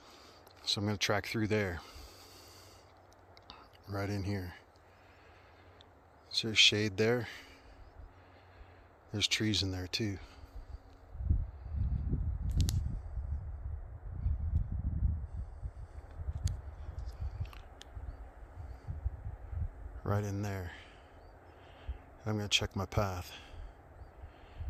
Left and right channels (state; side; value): identical; both; correlation 1.00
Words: So I'm going to track through there. Right in here. Is there shade there? There's trees in there too. Right in there. I'm going to check my path.